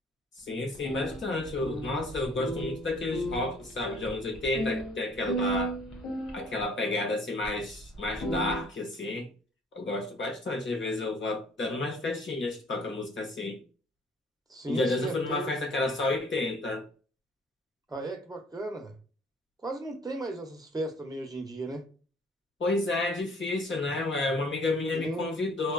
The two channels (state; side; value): normal; both; correlation 0.56